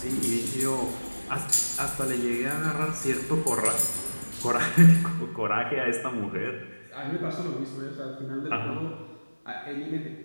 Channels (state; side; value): inverted; both; correlation -1.00